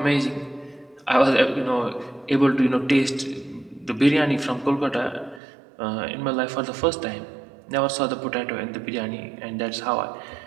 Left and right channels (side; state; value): left; drops out; at 5.4 s